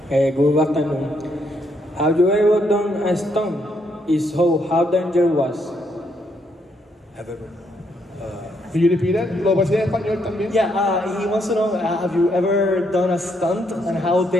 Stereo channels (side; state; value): both; normal; correlation 0.75